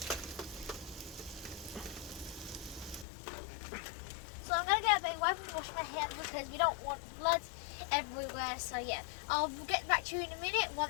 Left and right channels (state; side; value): drops out; right; at 3.1 s